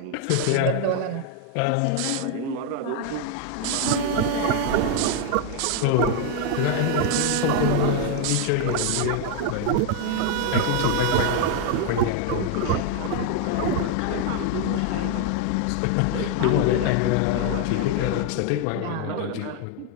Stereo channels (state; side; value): different; both; correlation 0.00